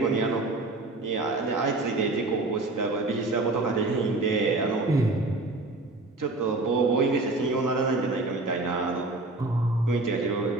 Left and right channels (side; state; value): left; quieter; 3.1 dB